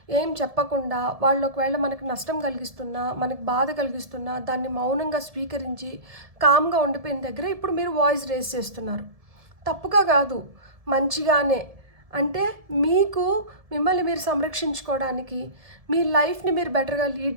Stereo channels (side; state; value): left; late; 1.7 ms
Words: ఏం చెప్పకుండా, వాళ్ళు ఒకవేళ మనకి నష్టం కలిగిస్తున్నా, మనకి బాధ కలిగిస్తున్నా దాన్ని మౌనంగా స్వీకరించి కామ్గా ఉండిపోయిన దగ్గర ఇప్పుడు మీరు వాయిస్ రేస్ చేస్తున్నారు. తప్పుగా కాదు, మంచిగానే. అంటే మీకు మిమ్మల్ని మీరు సంరక్షించుకోవడానికి, మీ లైఫ్ని మీరు బెటర్గా లీడ్